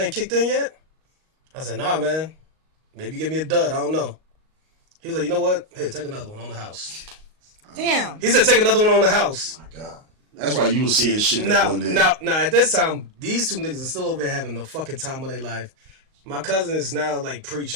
kicked in yet? I said, nah, man. Maybe give me a dud. I don't know. He was like, you know what? Here, take another one on the house. Damn. He said, take another one on the house. Oh my God. That's why you was seeing shit now, at this time, these two niggas are still over there having the fucking time of their life. My cousin is now, like,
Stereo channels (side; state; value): left; late; 38 ms